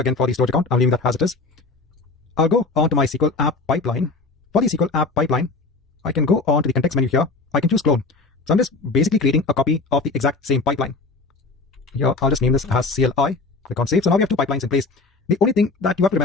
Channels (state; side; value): quieter; right; 3.7 dB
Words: for the storage account, I'm leaving that as it is. I'll go on to my SQL app pipeline. For the SQL app pipeline, I can go on to the context menu here. I can choose clone. So I'm just basically creating a copy of the exact same pipeline. Here, I'll just name this as CLI. Click on save. So now we have two pipelines in place. The only thing that you have to